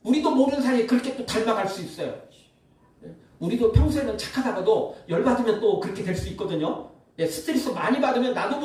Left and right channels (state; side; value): identical; both; correlation 1.00